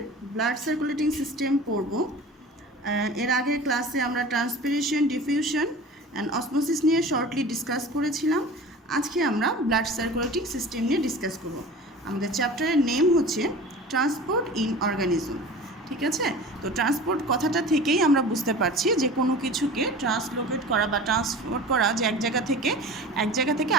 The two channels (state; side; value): normal; both; correlation 0.38